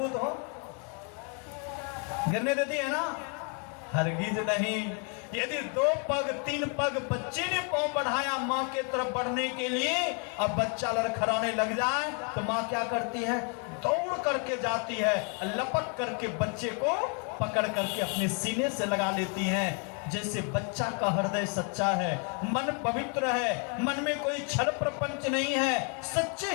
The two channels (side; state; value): right; quieter; 38.9 dB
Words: हो, गिरने देती है ना, हरगिज नहीं। यदि 2 पग 3 पग बच्चे ने पाँव बढ़ाया माँ के तरफ बढ़ने के लिए, अब बच्चा लड़खड़ाने लग जाए तो माँ क्या करती है, दौड़ करके जाती है, लपक करके बच्चे को पकड़ करके अपने सीने से लगा लेती है। जैसे बच्चा का हृदय सच्चा है, मन पवित्र है, मन में कोई छल प्रपंच नहीं है, सच्चे